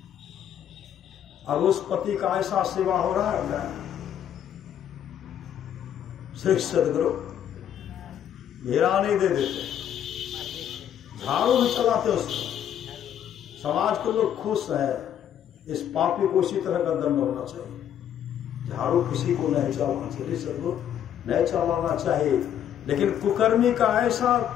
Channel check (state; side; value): quieter; right; 9.9 dB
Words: अब उस पति का ऐसा सेवा हो रहा है, श्री सदगुरु घेरा नहीं दे देते, झाड़ू भी चलाते उसको, समाज के लोग खुश है, इस पापी को इसी तरह का दंड होना चाहिए, झाड़ू किसी को नहीं चलाना चाहिए, सदगुरु नहीं चलाना चाहिए। लेकिन कुकर्मी का ऐसा